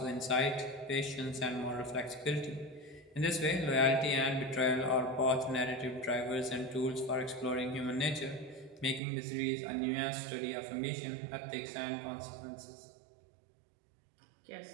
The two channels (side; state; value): left; drops out; at 9.0 s